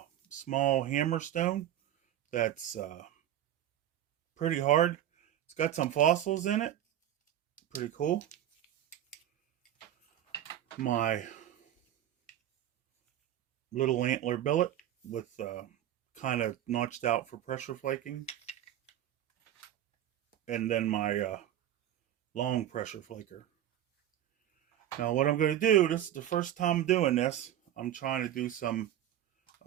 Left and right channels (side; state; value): left; quieter; 11.6 dB